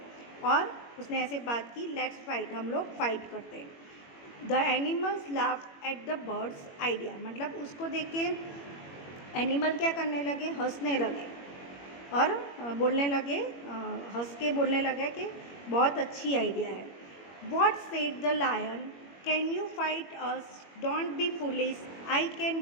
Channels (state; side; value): late; right; 21 ms